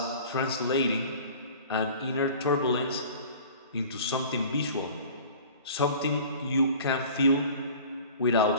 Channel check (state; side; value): inverted; both; correlation -0.44